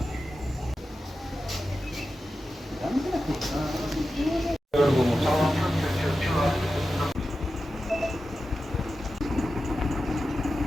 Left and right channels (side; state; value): both; normal; correlation 0.92